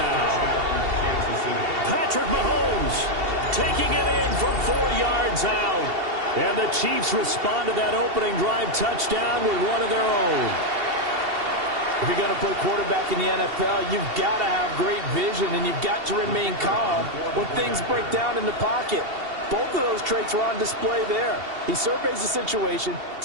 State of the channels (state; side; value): late; left; 2.7 ms